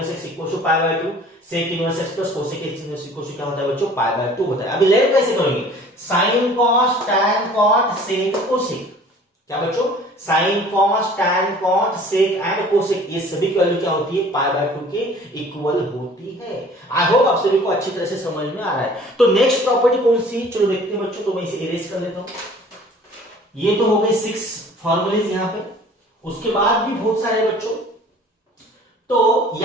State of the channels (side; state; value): both; normal; correlation 0.50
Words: x equal to pi by 2, sec inverse x plus cosec inverse equal to क्या होता है बच्चों, पाई बाय 2 होता है। अभी लेट कैसे करेंगे, sine cos tan cot sec cosec, क्या बच्चों, sine cos tan cot sec and cosec, ये सभी की वैल्यू क्या होती है, पाई बाय 2 के इक्वल होती है। आई होप आप सभी को अच्छी तरह से समझ में आ रहा है। तो नेक्स्ट प्रॉपर्टी कौन सी, चलो देखते हैं बच्चों। तो मैं इसे इरेज कर लेता हूं। ये तो हो गए 6 फॉर्मूलेज यहां पे, उसके बाद भी बहुत सारे बच्चों। तो